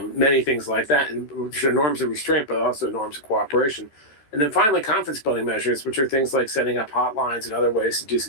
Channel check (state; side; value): late; right; 13 ms